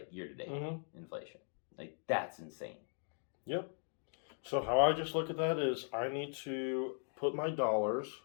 date inflation. Like that's insane. Yep. So how I just look at that is I need to put my dollars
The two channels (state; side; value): silent; right; 52 dB below the other